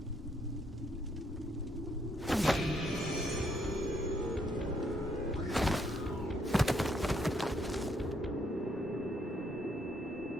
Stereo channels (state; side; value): normal; both; correlation 0.72